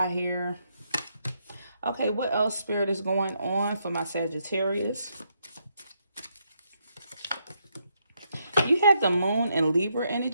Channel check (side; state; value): both; inverted; correlation -0.78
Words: here. Okay, what else, Spirit, is going on for my Sagittarius? You have the moon and Libra